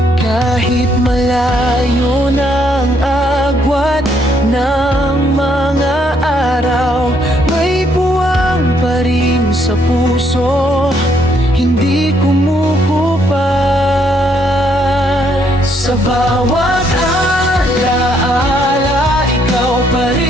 Kahit malayo na ang agwat ng mga araw, may buwang pa rin sa puso, hindi kumukupas. Sa bawat alaala, ikaw pa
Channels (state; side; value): normal; both; correlation 0.71